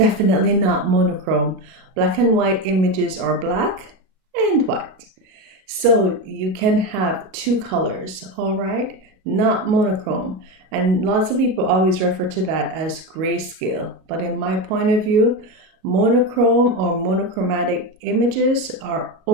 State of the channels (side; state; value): left; late; 37 ms